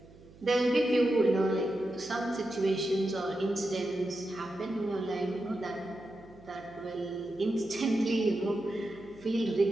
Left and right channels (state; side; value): noise; right; hum, 23 dB below the sound